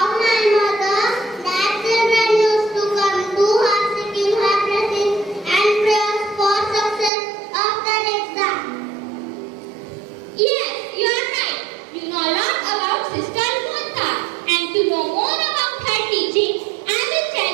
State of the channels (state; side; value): drops out; left; at 7.1 s